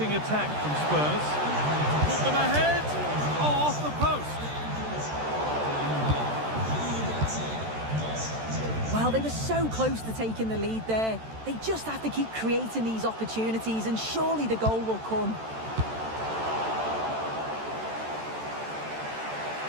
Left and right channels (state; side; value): late; left; 13 ms